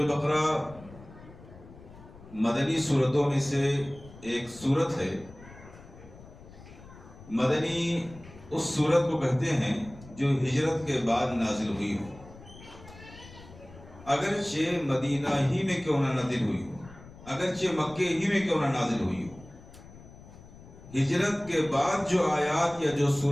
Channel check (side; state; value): left; noise; rumble, 19 dB below the sound